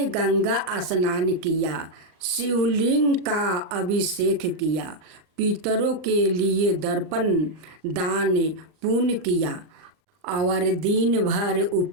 गंगा स्नान किया, शिवलिंग का अभिषेक किया, पितरों के लिए दर्पण दान पुण्य किया और दिन भर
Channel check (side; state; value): left; late; 39 ms